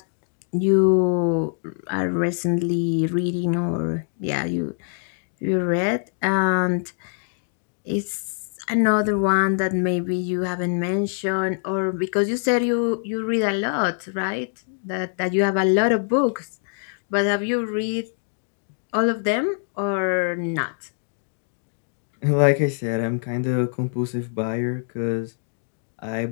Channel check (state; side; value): silent; right; digital silence